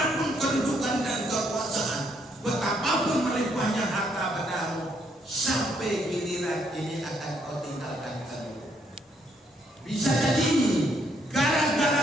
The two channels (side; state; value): both; normal; correlation 0.72